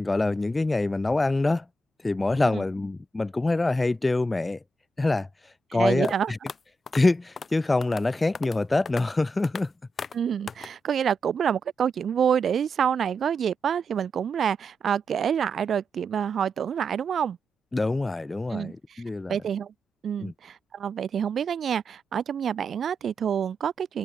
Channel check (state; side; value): normal; both; correlation 0.86